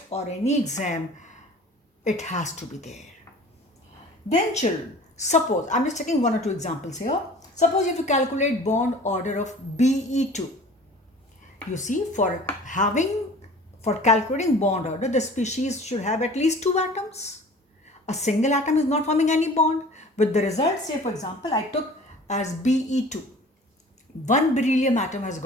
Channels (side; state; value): both; normal; correlation 0.45